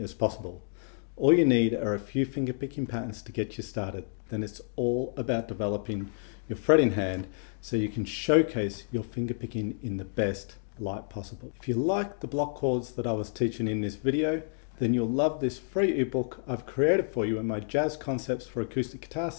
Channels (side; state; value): right; silent; digital silence